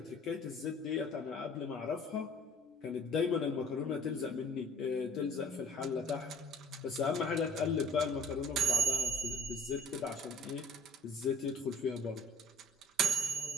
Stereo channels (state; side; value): normal; both; correlation 0.53